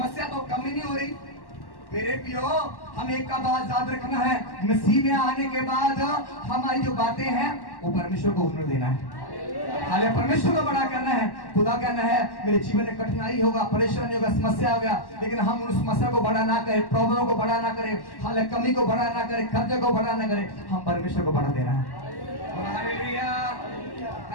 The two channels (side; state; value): right; late; 1.1 ms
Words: तो कम ही नहीं हो रही। मेरे प्रियो, हम एक का बात याद रखना है, मसीह में आने के बाद हमारी जो बातें हैं वो परमेश्वर को हुनर देना है। हाले परमेश्वर को बड़ा करना है। खुदा कहना है मेरे जीवन में कठिनाई होगा, परेशानी होगा, समस्या होगा, लेकिन हम उस समस्या को बड़ा ना करें, प्रॉब्लम को बड़ा ना करें, हाले कमी को बड़ा ना करें, खर्चे को बड़ा ना करें, हम परमेश्वर को बड़ा देना है। Hallelujah,